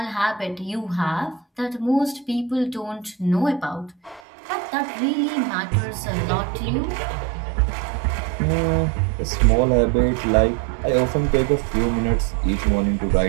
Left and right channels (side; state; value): left; drops out; at 4.2 s